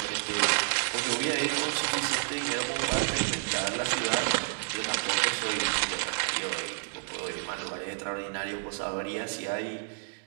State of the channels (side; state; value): left; silent; digital silence